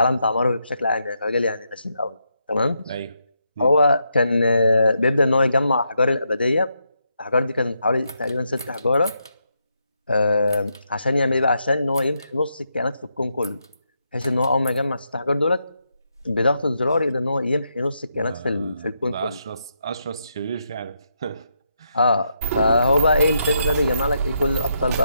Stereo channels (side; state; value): both; inverted; correlation -0.81